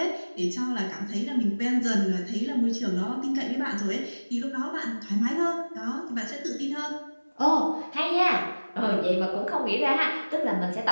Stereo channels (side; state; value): both; inverted; correlation -1.00